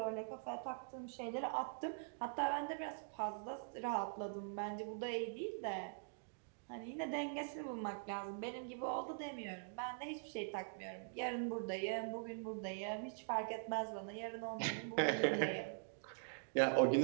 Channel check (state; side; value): silent; left; digital silence